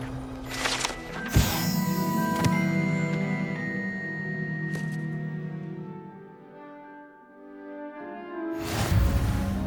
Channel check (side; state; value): both; identical; correlation 1.00